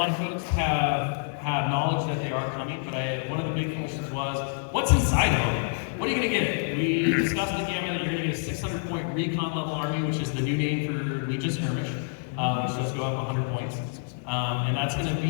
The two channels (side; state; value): right; silent; digital silence